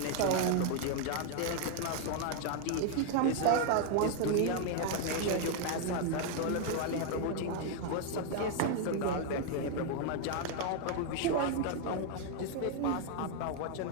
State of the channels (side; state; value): both; different; correlation 0.00